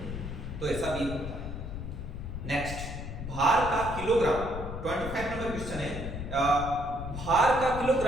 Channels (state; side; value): noise; left; rumble, 7 dB below the sound